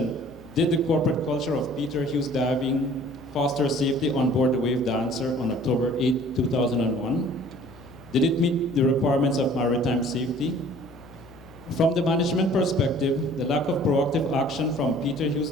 did the corporate culture of Peter Hughes Diving foster safety on board the Wave Dancer on October 8, 2001? Did it meet the requirements of maritime safety? From the management perspective, the lack of proactive action from Peter Hughes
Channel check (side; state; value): left; noise; hum, 25 dB below the sound